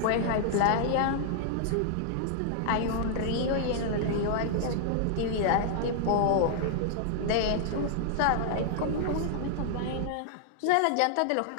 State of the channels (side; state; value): both; different; correlation -0.01